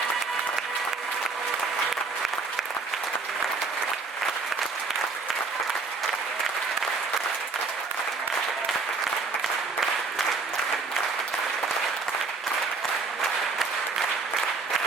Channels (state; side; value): quieter; left; 4.2 dB